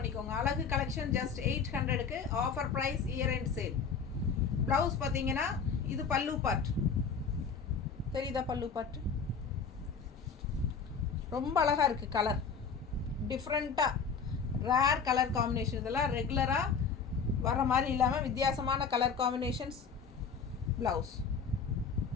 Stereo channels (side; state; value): right; quieter; 5.7 dB